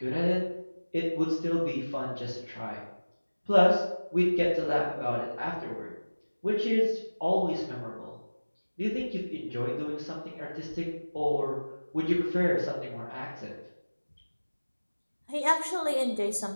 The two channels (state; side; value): inverted; both; correlation -1.00